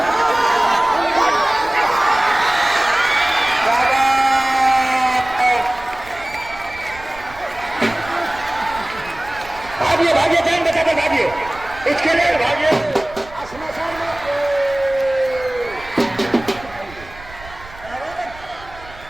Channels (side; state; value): right; noise; rumble, 19 dB below the sound